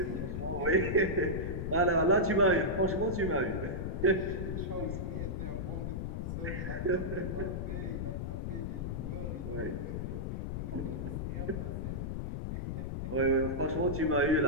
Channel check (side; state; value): left; noise; rumble, 3 dB below the sound